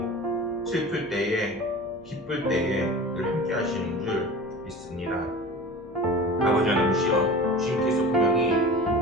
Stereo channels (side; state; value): left; noise; hum, 23 dB below the sound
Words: 슬플 때에 기쁠 때에 늘 함께 하시는 줄 믿습니다. 아버지 하나님이시여, 주님께서 분명히